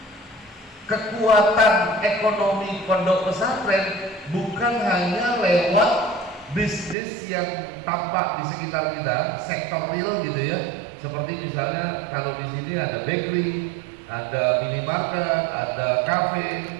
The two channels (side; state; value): left; drops out; at 7.0 s